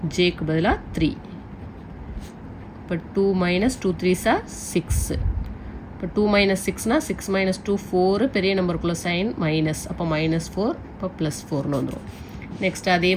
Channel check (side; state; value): both; identical; correlation 1.00